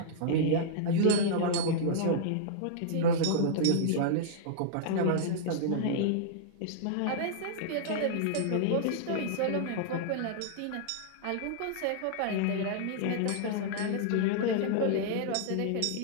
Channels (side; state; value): both; different; correlation -0.02